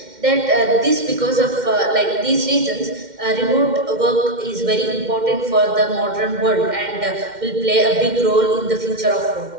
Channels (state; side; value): late; left; 2.1 ms